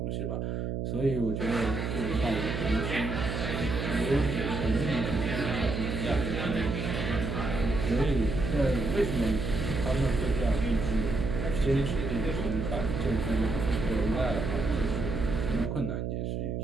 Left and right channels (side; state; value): right; noise; hum, 2 dB below the sound